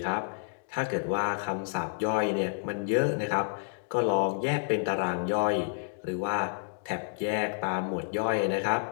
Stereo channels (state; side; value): silent; right; digital silence